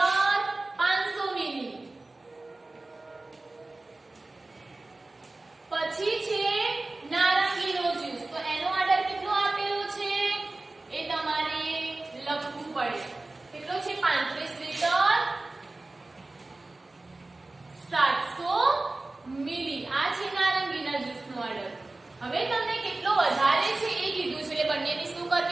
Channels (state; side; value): quieter; left; 3.0 dB